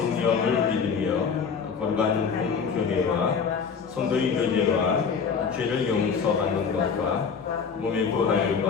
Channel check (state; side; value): quieter; right; 6.0 dB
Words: 믿으며 거룩한 공교회와 성도의 교제와 죄를 용서받는 것과 몸의